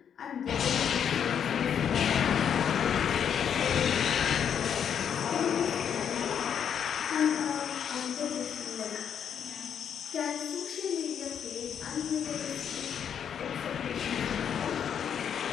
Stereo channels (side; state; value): right; quieter; 8.3 dB